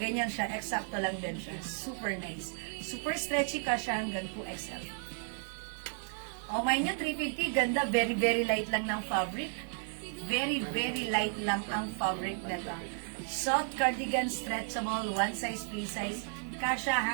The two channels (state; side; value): silent; left; 55 dB below the other